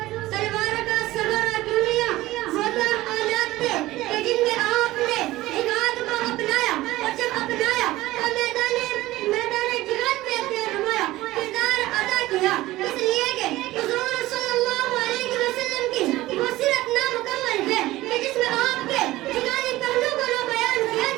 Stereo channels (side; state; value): left; quieter; 17.4 dB